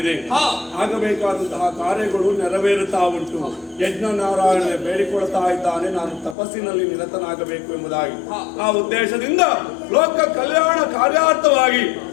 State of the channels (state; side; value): drops out; right; at 6.4 s